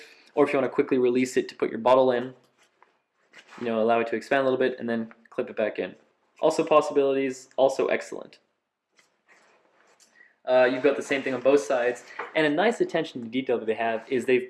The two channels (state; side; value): identical; both; correlation 1.00